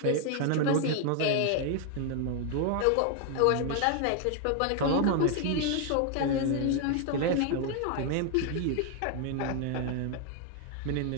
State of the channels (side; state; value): both; different; correlation 0.00